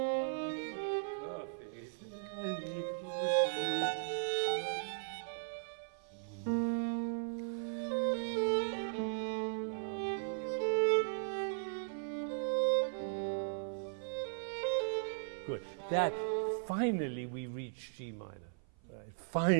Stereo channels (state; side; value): silent; left; 53 dB below the other